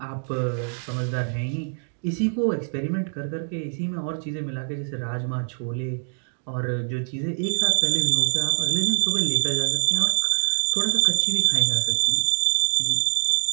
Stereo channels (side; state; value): left; silent; 62 dB below the other